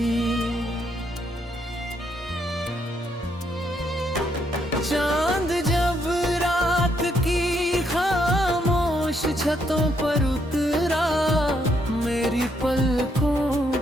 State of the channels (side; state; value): both; normal; correlation 0.74